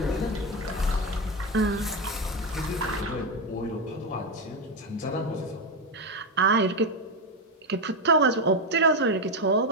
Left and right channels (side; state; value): both; normal; correlation 0.10